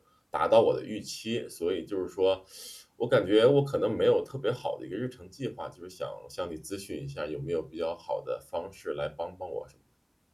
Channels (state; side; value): identical; both; correlation 1.00